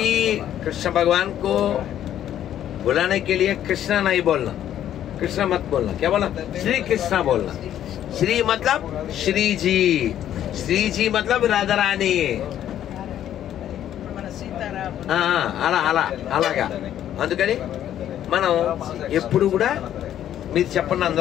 कृष्ण भगवान को बुलाने के लिए कृष्णा नहीं बोलना, कृष्णा मत बोलना, क्या बोलना? श्री कृष्णा बोलना. श्री मतलब श्री जी, श्री जी मतलब राधा रानी. అలా అలా అలాగా. అందుకని మనం ఎప్పుడు కూడా మీరు చెప్పండి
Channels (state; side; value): quieter; right; 11.1 dB